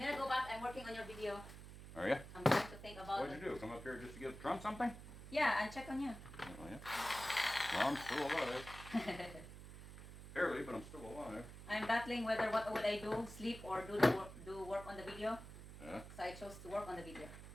gonna go back. I'm working on your video. Are you? I'm trying to think about What'd you do? Come up here just to give Trump something? Yeah, and check on you. Oh, yeah. Well, I'm still alive. Barely, but I'm still alive. I'm battling whether what would I do, sleep or do work on the video. Yeah. So I chose to work on the video.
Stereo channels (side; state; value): right; noise; hum, 13 dB below the sound